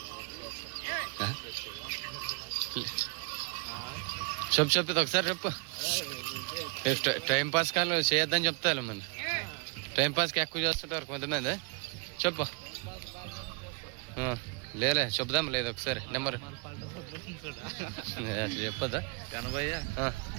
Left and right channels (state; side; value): quieter; left; 34.5 dB